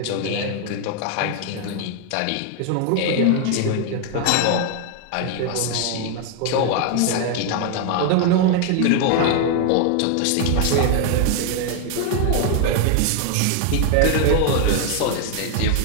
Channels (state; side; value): different; both; correlation 0.00